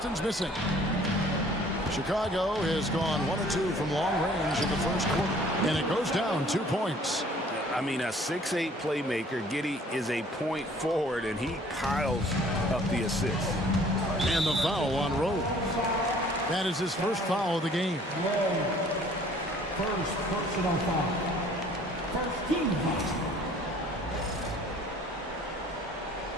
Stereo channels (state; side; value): normal; both; correlation 0.55